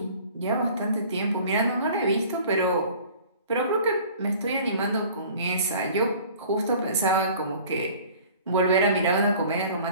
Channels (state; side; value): inverted; both; correlation -0.48